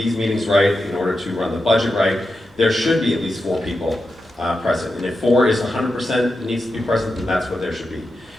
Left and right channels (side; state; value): both; normal; correlation 0.89